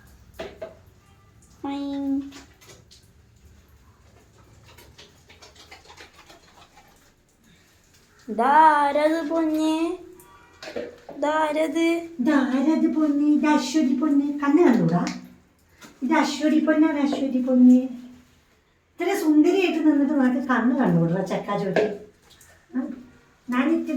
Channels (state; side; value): identical; both; correlation 1.00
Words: ഇതാരത് പൊന്നെ? ഇതാരത്? ഇതാരത് പൊന്നെ? ഇത് അശ്വതി പൊന്നെ. കണ്ണ് കണ്ടൂടാ? ഇത് അശ്വതി പൊന്നാണ്. അശ്വതി പൊന്നെ ഇത്ര സുന്ദരിയായിട്ട് നിന്നിട്ട് നിനക്ക് കണ്ണ് കണ്ടുകൂടാ ചെക്കാ ചോട്ടി? ഞാൻ